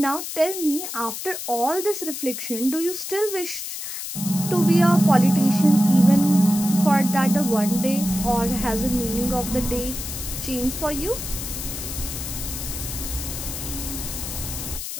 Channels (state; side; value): noise; left; hiss, 7 dB below the sound